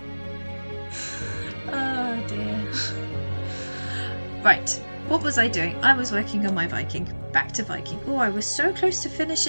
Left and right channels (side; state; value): both; inverted; correlation -1.00